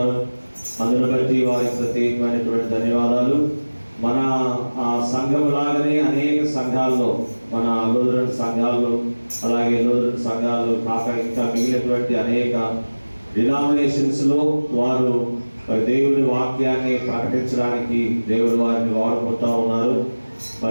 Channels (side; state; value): both; inverted; correlation -1.00